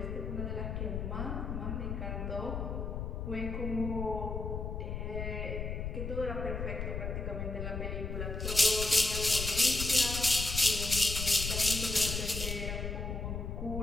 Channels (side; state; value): left; noise; rumble, 4 dB below the sound